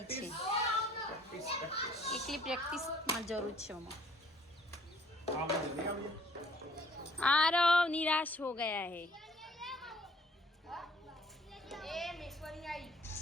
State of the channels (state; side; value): normal; both; correlation 0.58